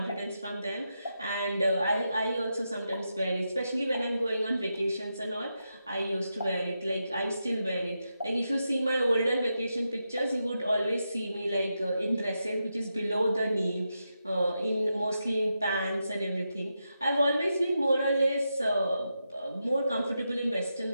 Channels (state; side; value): inverted; both; correlation -0.86